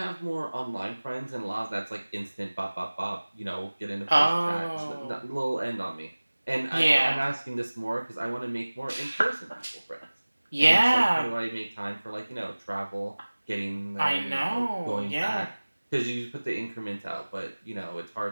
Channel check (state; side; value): inverted; both; correlation -1.00